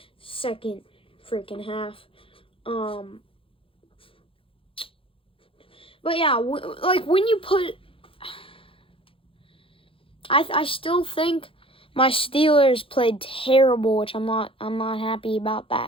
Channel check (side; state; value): right; late; 0.26 ms